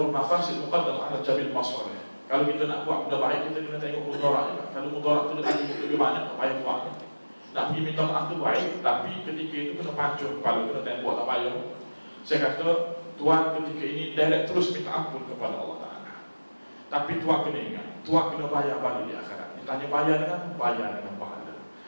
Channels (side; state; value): both; inverted; correlation -1.00